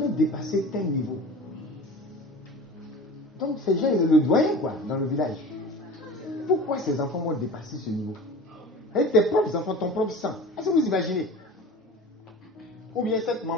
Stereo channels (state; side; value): normal; both; correlation 0.37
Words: dépassé tel niveau. Donc ces gens, ils le doyen quoi, dans le village. Pourquoi ces enfants vont dépasser ce niveau? Avec tes propres enfants, ton propre sang. Est-ce que vous imaginez? Ou bien cette